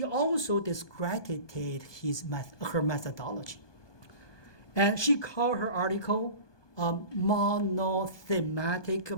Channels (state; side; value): late; right; 1.2 ms